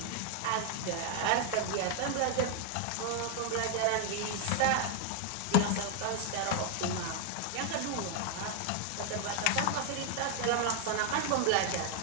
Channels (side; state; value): both; different; correlation 0.00